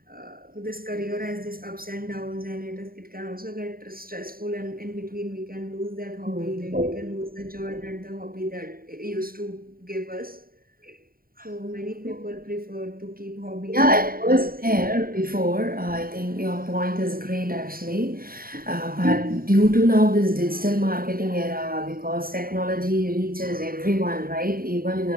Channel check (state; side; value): late; left; 0.43 ms